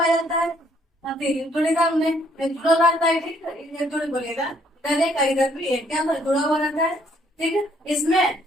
जाता है। जोड़ीदार में जुड़ा रहता है। ठीक है, ये जोड़ी बोलेगा इधर एक इधर भी एक क्या जुड़ा हुआ रहता है। ठीक है, इसमें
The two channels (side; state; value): both; normal; correlation 0.66